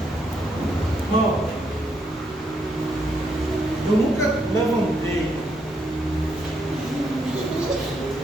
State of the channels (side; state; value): both; normal; correlation 0.76